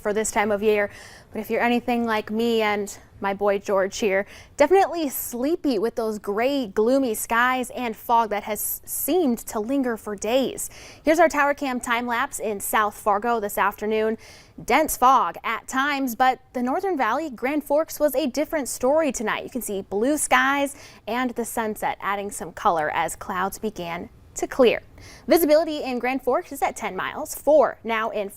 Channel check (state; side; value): identical; both; correlation 1.00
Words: this time of year. But if you're anything like me and my boy George here, definitely sleepy with those gray, gloomy skies and fog that has seemed to linger for days. Here's our tower cam time lapse in South Fargo this afternoon. Dense fog at times, but the Northern Valley, Grand Forks was a different story tonight. You can see blue skies and the sunset adding some color as clouds began to clear. Visibility in Grand Forks is at 10 miles, 4 now in